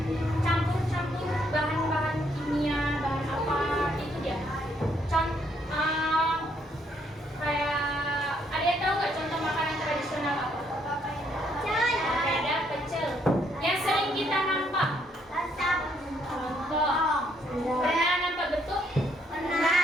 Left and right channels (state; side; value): normal; both; correlation 0.71